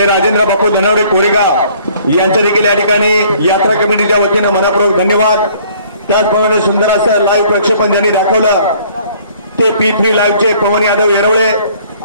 राजेंद्र बापू धनवडे कोरेगाव यांच्या देखील या ठिकाणी यात्रा कमिटीच्या वतीनं मनपूर्वक धन्यवाद। त्याचप्रमाणे सुंदर असं लाईव्ह प्रक्षेपण ज्यांनी दाखवलं ते P3 लाईव्हचे पवन यादव येरवळे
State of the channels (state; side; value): inverted; both; correlation -0.57